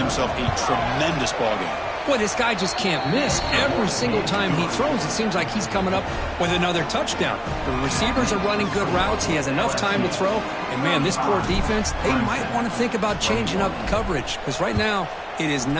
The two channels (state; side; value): identical; both; correlation 1.00